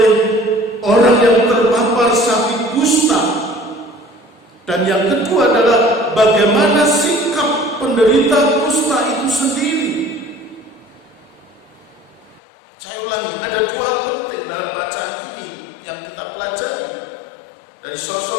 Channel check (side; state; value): right; drops out; at 12.4 s